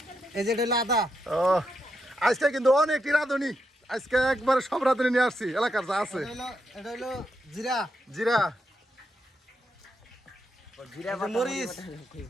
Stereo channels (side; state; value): both; normal; correlation 0.82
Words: এই যে এটা হলো আদা আজকে কিন্তু অনেকটি রাঁধুনি আজকে একবার সব রাঁধুনি নিয়ে আসছি এলাকার যা আছে এটা হলো জিরা জিরা মরিচ